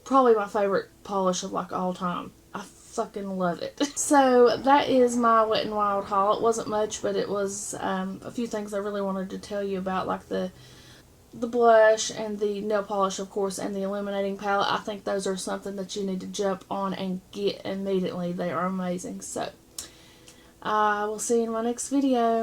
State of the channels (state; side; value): identical; both; correlation 1.00